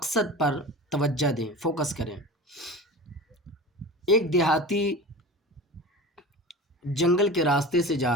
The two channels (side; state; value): both; normal; correlation 0.33